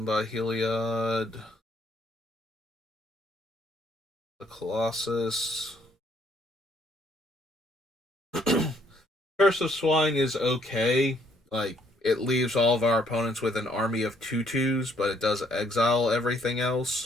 by Heliod, the Colossus. Curse of Swine is okay. Like, it leaves all of our opponents with an army of 2/2s, but it does exile everything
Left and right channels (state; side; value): normal; both; correlation 0.67